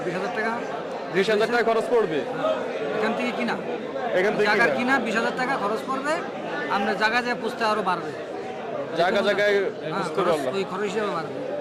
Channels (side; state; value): both; identical; correlation 1.00